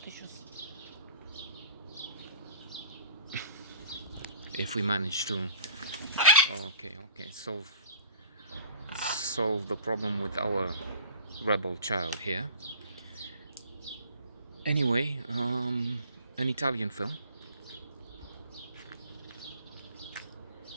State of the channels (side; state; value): both; inverted; correlation -0.47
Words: if we manage to okay solve the problem with our rebel child here. Anyway, an Italian film,